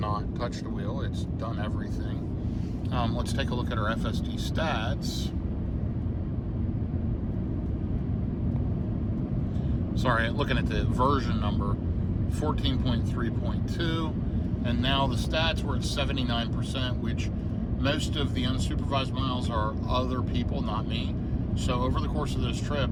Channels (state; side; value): identical; both; correlation 1.00